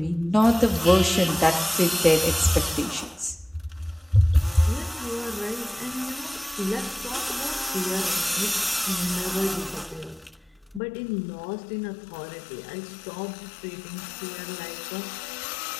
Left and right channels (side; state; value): right; drops out; at 10.8 s